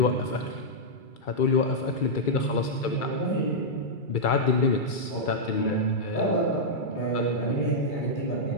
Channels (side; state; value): right; late; 2.3 ms